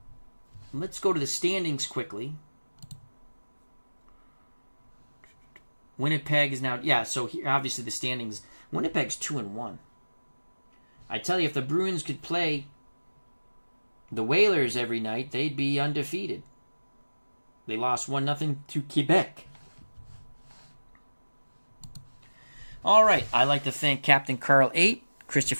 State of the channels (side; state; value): both; inverted; correlation -1.00